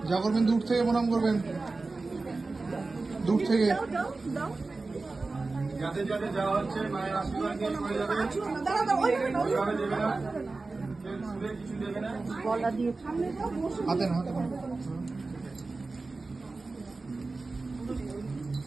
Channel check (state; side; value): quieter; left; 3.6 dB